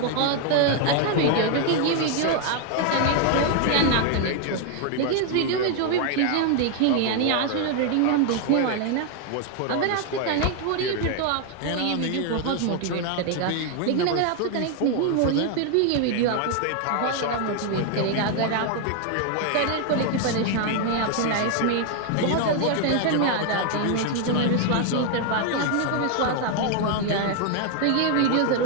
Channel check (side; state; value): both; different; correlation 0.01